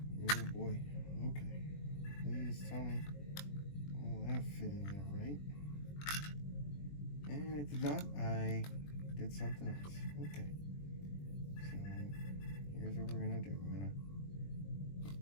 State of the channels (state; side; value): late; right; 21 ms